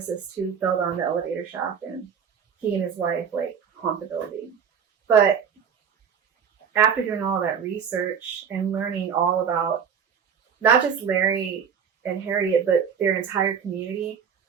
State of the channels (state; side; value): quieter; left; 7.2 dB